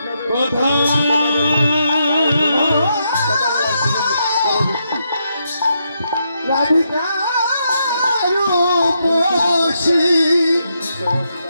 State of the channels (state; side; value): inverted; both; correlation -0.80